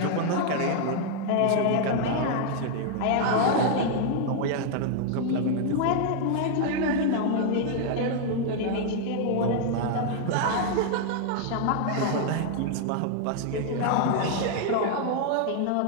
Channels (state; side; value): different; both; correlation 0.00